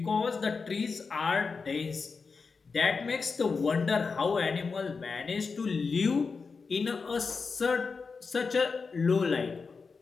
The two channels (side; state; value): right; quieter; 4.8 dB